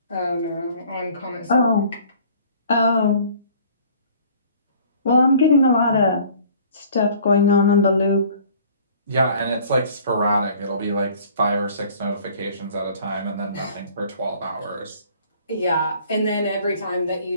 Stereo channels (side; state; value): both; inverted; correlation -0.52